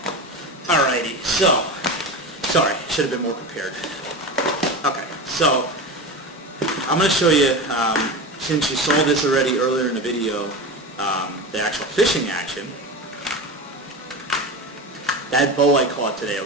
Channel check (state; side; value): normal; both; correlation 0.25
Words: Alrighty. So, sorry, should have been more prepared. Okay. So, I'm going to show you, since you saw this already earlier in the video, the actual fishing action. That bow I caught today,